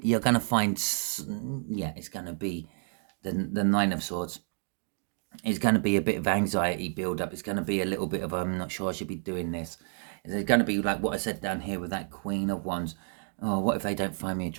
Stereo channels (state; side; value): silent; left; 58 dB below the other